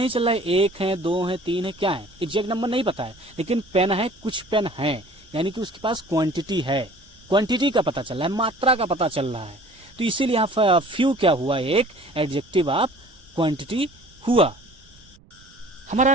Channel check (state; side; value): noise; right; rumble, 27 dB below the sound